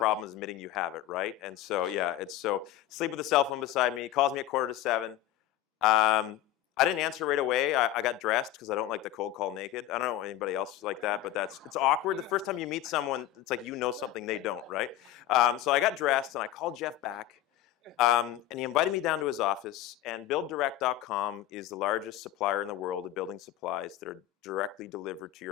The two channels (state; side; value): quieter; right; 12.9 dB